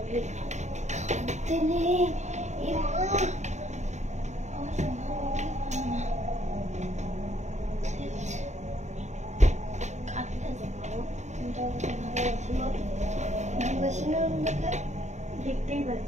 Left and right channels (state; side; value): late; left; 0.34 ms